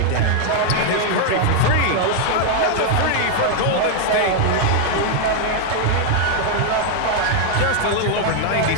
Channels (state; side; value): different; both; correlation 0.00